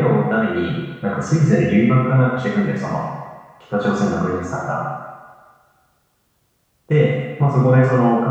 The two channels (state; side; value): identical; both; correlation 1.00